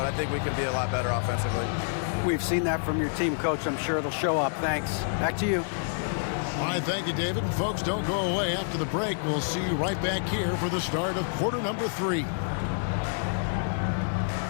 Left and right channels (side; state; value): right; silent; digital silence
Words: I think we can be a lot better offensively. We've seen that from your team, Coach. I'm sure it'll show up. Thanks. Back to you. All right, thank you, David. And folks, don't go away. After the break, we'll see you right back here for the start of quarter number 3.